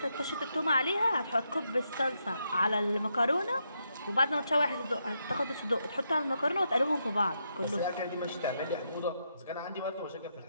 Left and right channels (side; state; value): both; inverted; correlation -0.81